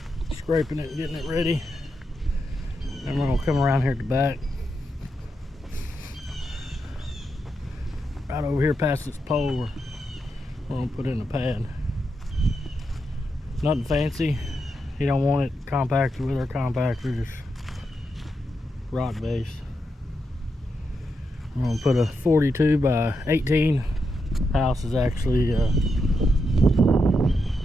scraping it and getting it ready. And we're going to come around here at the back. Right over here past this pole, we're going to put in a pad. Nothing fancy. You don't want it compacted with our compactor, just rock base. I'm going to put a 42 by 18. House is actually, I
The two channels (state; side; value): normal; both; correlation 0.85